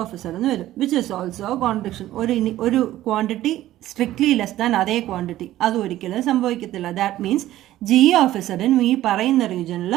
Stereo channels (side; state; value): left; quieter; 14.4 dB